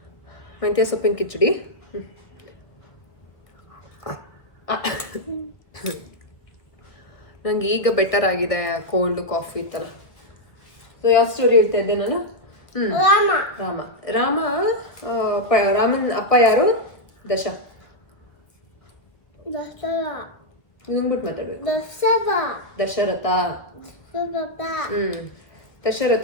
ಮೆಂತ್ಯ ಸೊಪ್ಪಿನ ಕಿಚಡಿ. ನಂಗೆ ಈಗ ಬೆಟರ್ ಆಗಿದೆ ಕೋಲ್ಡ್ ಕಾಫಿ ಇತ್ತಲ್ಲ. ಸೊ ಯಾವ ಸ್ಟೋರಿ ಹೇಳ್ತಾ ಇದ್ದೆ ನಾನು? ರಾಮನ್ ಅಪ್ಪ ಯಾರು? ಹಿಂಗ್ಬಿಟ್ಟು ಮಾತಾಡ್ಬೇಕು. ದಶರಥ.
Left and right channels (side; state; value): right; late; 1.3 ms